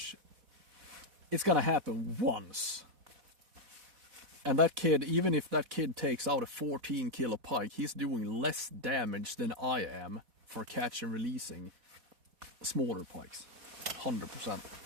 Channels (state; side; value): late; left; 4.1 ms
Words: it's gonna happen once. And that kid, even if that kid takes out a 14 kilo pike, he's doing less damage than I am for catch and releasing smaller pikes. 100%.